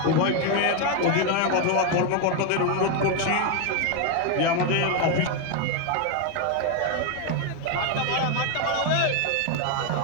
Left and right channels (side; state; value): both; different; correlation 0.01